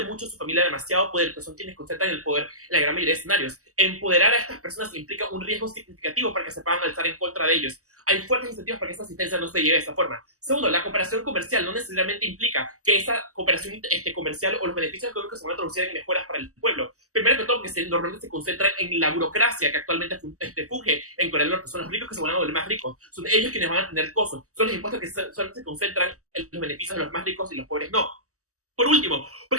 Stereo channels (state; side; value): late; left; 0.66 ms